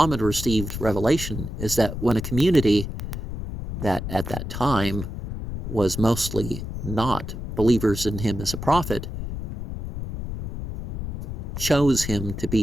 received revelation, is that when a community that at that time was mostly not believers in him as a prophet chose him to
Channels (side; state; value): left; noise; rumble, 6 dB below the sound